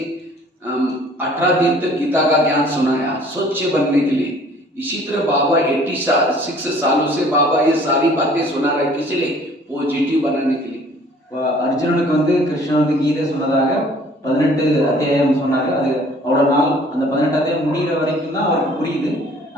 18 दिन तक गीता का ज्ञान सुनाया स्वच्छ बनने के लिए, इसी तरह बाबा 86 सालों से बाबा ये सारी बातें सुना रहे, किस लिए? पॉजिटिव बनाने के लिए. அர்ஜுனனுக்கு வந்து கிருஷ்ணன் வந்து கீதை சொன்னதாக 18 அத்தியாயம் சொன்னாரு. அது அவ்வளோ நாள் அந்த 18 அத்தியாயம் முடிகிற வரைக்கும் தான் அவருக்கு புரியுது.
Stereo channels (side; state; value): both; normal; correlation 0.54